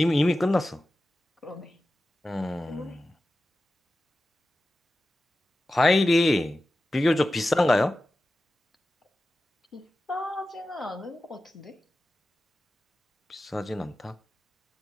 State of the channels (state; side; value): normal; both; correlation 0.94